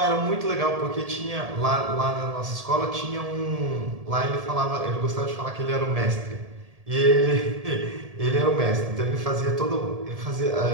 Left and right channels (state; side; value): late; left; 1.7 ms